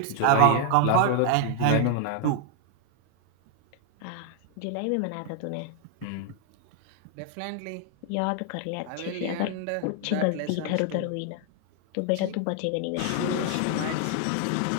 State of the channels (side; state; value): both; different; correlation 0.00